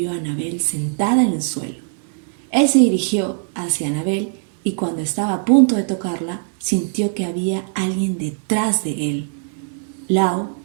a Annabelle sentada en el suelo. Él se dirigió hacia Annabelle y cuando estaba a punto de tocarla, sintió que había alguien detrás de él. Lao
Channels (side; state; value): left; silent; digital silence